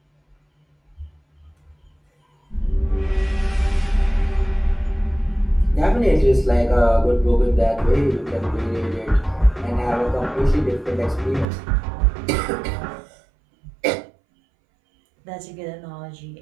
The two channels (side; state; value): left; drops out; at 11.5 s